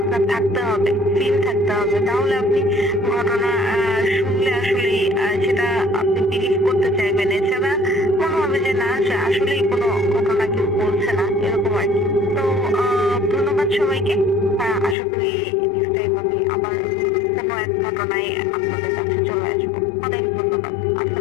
থাকতে হবে, ফিল থাকতে হবে, তাহলে আপনি ঘটনা শুনলে আসলে সেটা আপনি বিলিভ করতে চাইবেন। এছাড়া মনে হবে যে না, আসলেই কোনো ঘটনা কেউ বলছে না, এরকম আর কি। তো ধন্যবাদ সবাইকে। আশা করি নেক্সট টাইম আমি আবার কোনো এক ঘটনায় আপনাদের কাছে চলে আসবো। অনেক ধন্যবাদ।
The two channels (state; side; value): drops out; right; at 15.0 s